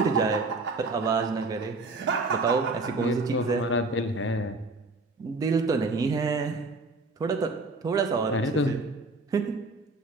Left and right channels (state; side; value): quieter; left; 3.2 dB